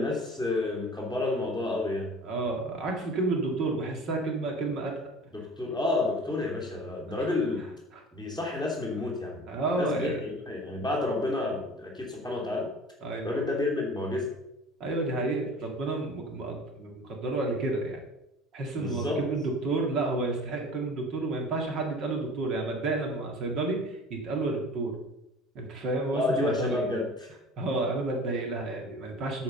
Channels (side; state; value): both; normal; correlation 0.42